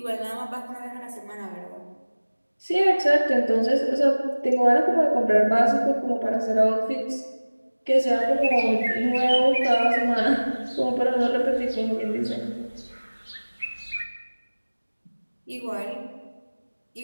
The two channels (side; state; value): both; inverted; correlation -1.00